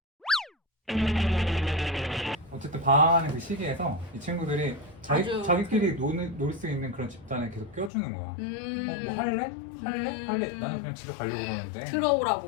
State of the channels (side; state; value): right; drops out; at 7.9 s